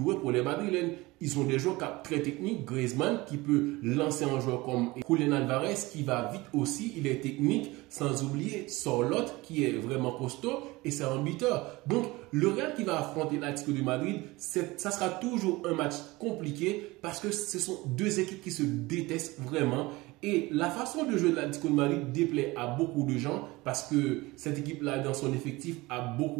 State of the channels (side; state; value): left; quieter; 21.4 dB